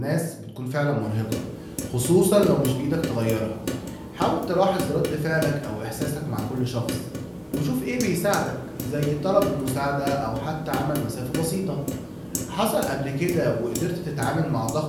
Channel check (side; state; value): both; identical; correlation 1.00